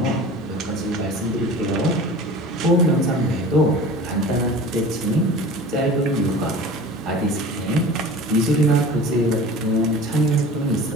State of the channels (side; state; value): both; normal; correlation 0.39